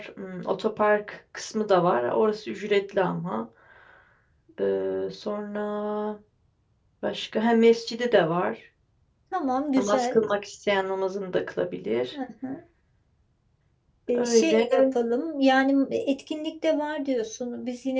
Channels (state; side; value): identical; both; correlation 1.00